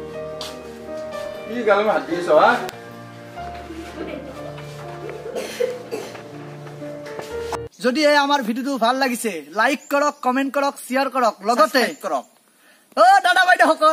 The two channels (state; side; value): identical; both; correlation 1.00